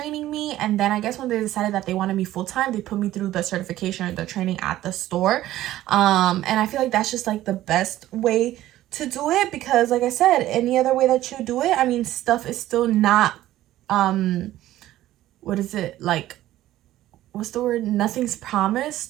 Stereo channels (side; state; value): left; quieter; 14.4 dB